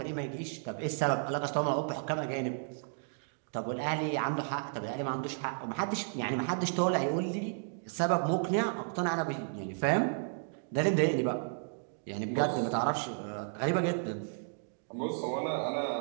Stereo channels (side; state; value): left; silent; digital silence